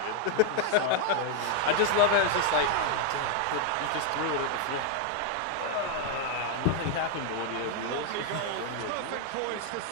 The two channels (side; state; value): both; different; correlation 0.00